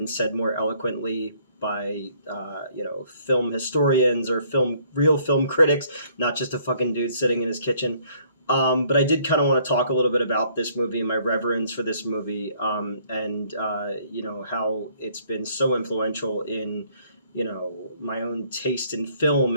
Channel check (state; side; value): inverted; both; correlation -0.63